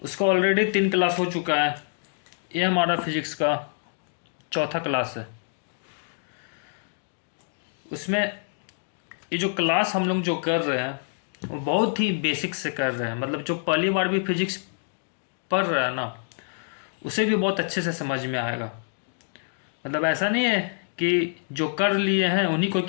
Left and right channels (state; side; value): silent; right; digital silence